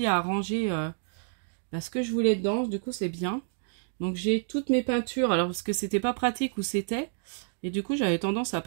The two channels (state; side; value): silent; left; digital silence